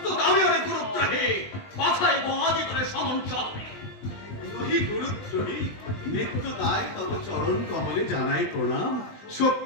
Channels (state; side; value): late; right; 20 ms